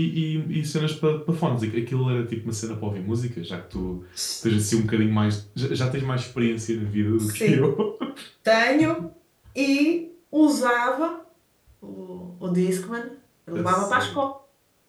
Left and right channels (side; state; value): both; identical; correlation 1.00